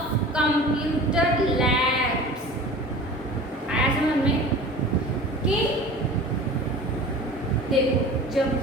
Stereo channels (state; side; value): normal; both; correlation 0.39